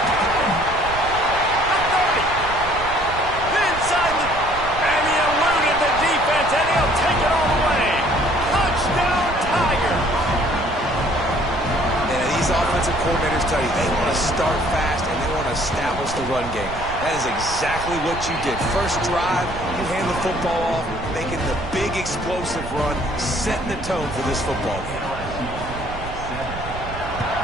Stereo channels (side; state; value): right; noise; rumble, 11 dB below the sound